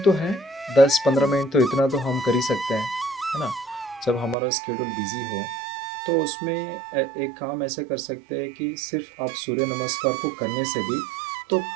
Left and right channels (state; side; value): drops out; left; at 4.4 s